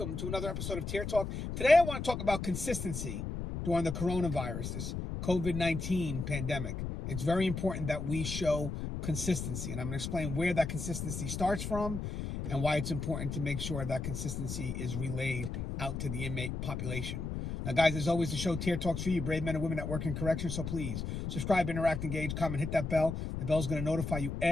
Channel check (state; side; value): noise; left; rumble, 4 dB below the sound